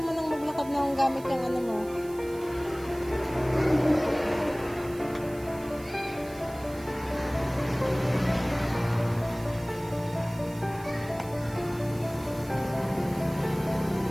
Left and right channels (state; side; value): noise; right; hiss, 20 dB below the sound